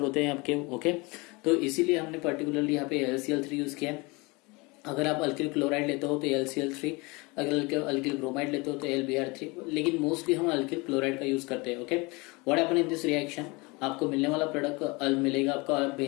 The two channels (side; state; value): right; quieter; 26.0 dB